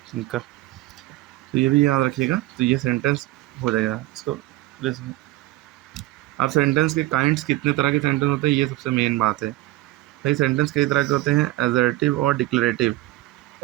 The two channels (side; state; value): left; quieter; 17.8 dB